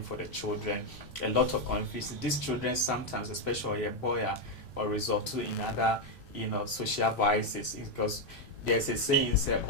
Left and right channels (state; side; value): normal; both; correlation 0.03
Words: for the children, a lot of confusion. These children sometimes, especially a boy, or resort to in other, social vices because there's a saying say